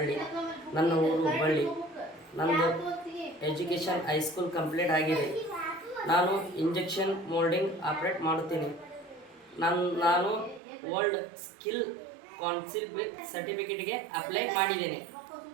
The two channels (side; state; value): left; drops out; at 10.6 s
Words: ನನ್ನ ಊರು ಹುಬ್ಬಳ್ಳಿ. ನಂದು ಎಜುಕೇಷನ್ ಹೈಸ್ಕೂಲ್ ಕಂಪ್ಲೀಟ್ ಆಗಿದೆ. ನಾನು ಇಂಜೆಕ್ಷನ್ ಮೋಲ್ಡಿಂಗ್ ಆಪ್ರೇಟ್ ಮಾಡುತ್ತೀನಿ. ನಾನು ವರ್ಲ್ಡ್ ಸ್ಕಿಲ್ ಕೌನ್ಸಿಲ್ ಸರ್ಟಿಫಿಕೇಟ್ಗೆ ಅಪ್ಲೈ ಮಾಡಿದ್ದೇನೆ.